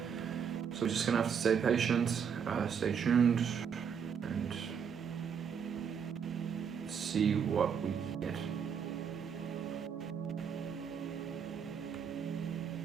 So we're just going to have to stay patient, stay tuned, and see what we get.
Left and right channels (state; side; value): quieter; left; 7.2 dB